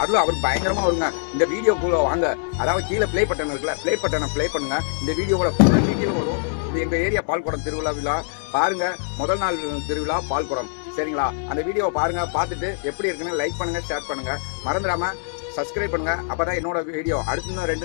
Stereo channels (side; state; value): right; silent; digital silence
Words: பயங்கரமா வருங்க. இந்த வீடியோக்குள்ள வாங்க, அதாவது கீழே ப்ளே பட்டன் இருக்குல்ல, ப்ளே பட்டனை ப்ளே பண்ணுங்க. இந்த வீடியோவோட ஃபுல் டீட்டெயில் வரும். இது எங்க ஏரியா பால்குடம் திருவிழா விழா பாருங்க. முதல் நாள் திருவிழா பால்குடம், சரிங்களா? அந்த வீடியோவை பாருங்க. பார்த்துட்டு எப்படி இருக்குன்னு லைக் பண்ணுங்க, ஷேர் பண்ணுங்க, மறந்துடாம சப்ஸ்கிரைப் பண்ணுங்க. அப்பதான் என்னோட வீடியோ அடுத்து